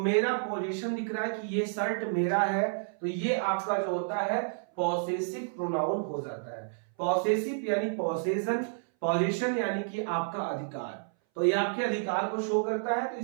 पोजीशन दिख रहा है कि ये शर्ट मेरा है, तो ये आपका जो होता है पॉसेसिव प्रोनाउन हो जाता है। पॉसेसिव यानी पॉसेशन, पोजीशन यानी कि आपका अधिकार, तो ये आपके अधिकार को शो करता है। तो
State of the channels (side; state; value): left; silent; 58 dB below the other